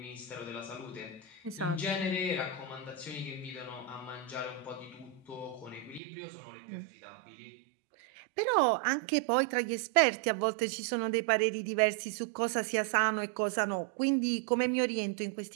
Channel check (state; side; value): drops out; left; at 6.0 s